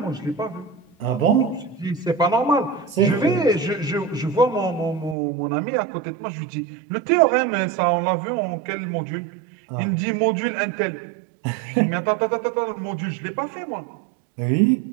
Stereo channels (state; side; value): drops out; left; at 5.2 s